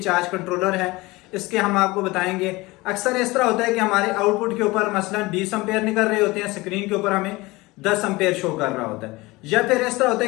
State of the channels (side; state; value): right; quieter; 21.9 dB